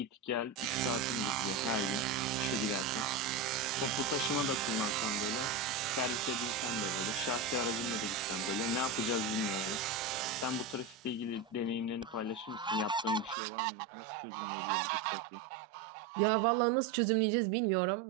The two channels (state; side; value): drops out; left; at 13.4 s